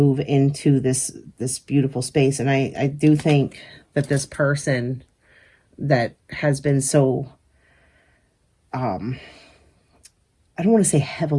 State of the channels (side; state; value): both; identical; correlation 1.00